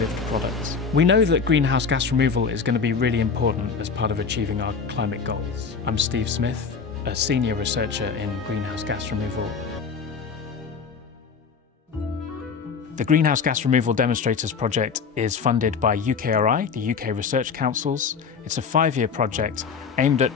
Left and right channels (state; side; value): quieter; right; 5.7 dB